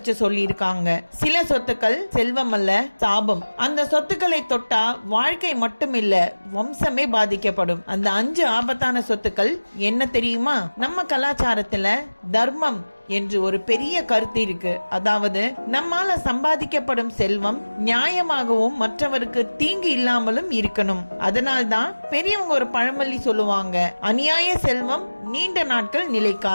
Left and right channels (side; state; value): both; inverted; correlation -1.00